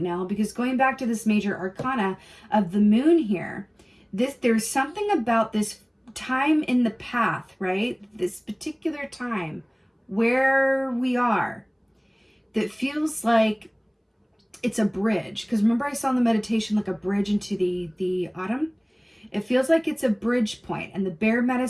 now because going back to this major arcana of the moon here, there's something about this time in the path, right? This particular time where we are that feels like it's a bridge. Because remember I saw in the meditation like a bridge into the autumn? It feels like it's a bridge point, and the bear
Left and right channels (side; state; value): both; identical; correlation 1.00